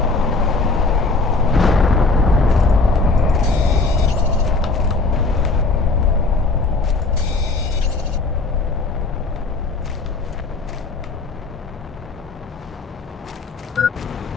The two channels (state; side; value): quieter; right; 3.7 dB